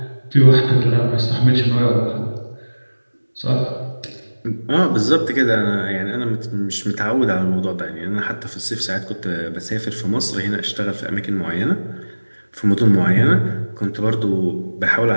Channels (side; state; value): both; inverted; correlation -1.00